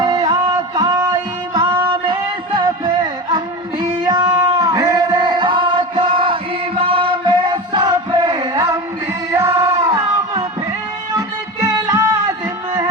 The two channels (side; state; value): both; normal; correlation 0.26